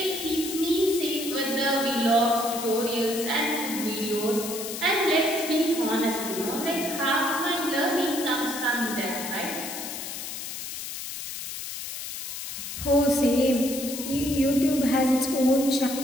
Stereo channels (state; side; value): noise; left; hiss, 7 dB below the sound